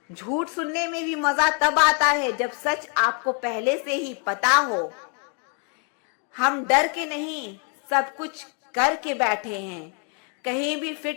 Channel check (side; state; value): right; quieter; 39.7 dB